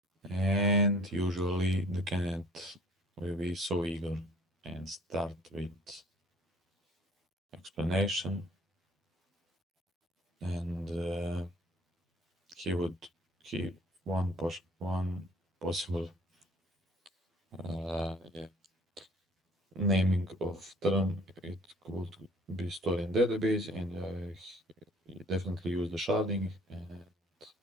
And usually the candidate will be so eager and start with explanation, and he would keep one possible yeah, naming of term. It could be stored in database, and he definitely use the sharding and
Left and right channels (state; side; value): normal; both; correlation 0.53